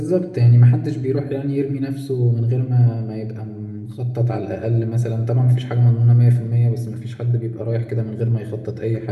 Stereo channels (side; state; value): both; identical; correlation 1.00